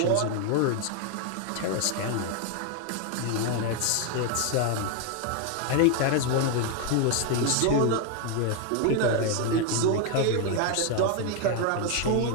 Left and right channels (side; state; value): both; different; correlation 0.01